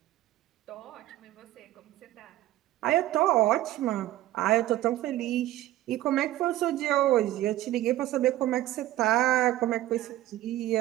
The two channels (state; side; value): quieter; left; 15.0 dB